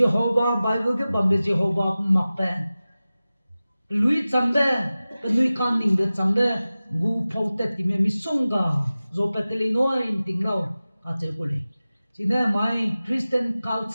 Bible ke bambe Jehovah makpe lui chambe anui kan ning de chambe gu phote ti me misonga zo peteli no in tinglo ka che kule chine my Christian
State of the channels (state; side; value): inverted; both; correlation -0.96